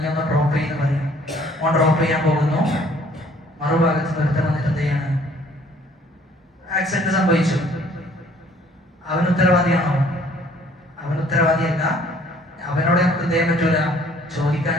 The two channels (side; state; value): both; normal; correlation 0.58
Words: ഒന്ന് ഡ്രോപ്പ് ചെയ്യുന്ന പറയും. ഓൻ ഡ്രോപ്പ് ചെയ്യാൻ പോകുന്നു, മറുഭാഗത്ത് നിർത്തം വന്നിട്ട് എന്ത് ചെയ്യാണ്, ആക്സിഡന്റ് സംഭവിച്ചു. അവൻ ഉത്തരവാദിയാണോ? അവൻ ഉത്തരവാദിയല്ല. അവനോട് നമുക്ക് എന്ത് ചെയ്യാൻ പറ്റൂല,